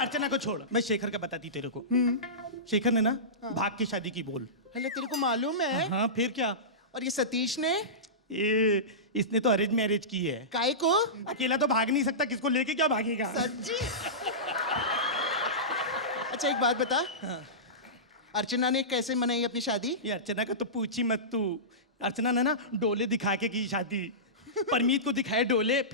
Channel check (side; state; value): both; normal; correlation -0.19